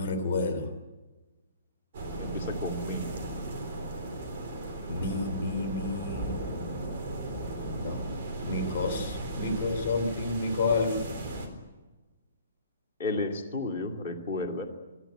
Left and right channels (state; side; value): inverted; both; correlation -0.49